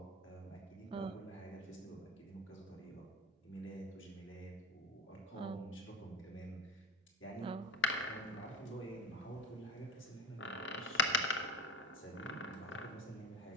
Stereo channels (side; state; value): both; normal; correlation 0.30